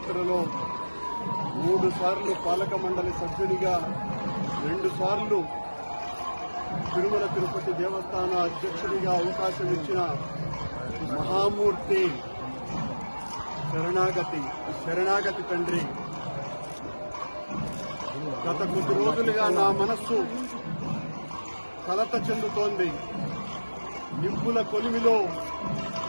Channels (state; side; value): inverted; both; correlation -1.00